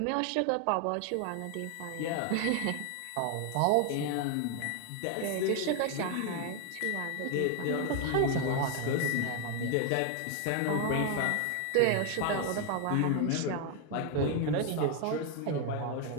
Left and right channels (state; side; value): different; both; correlation 0.01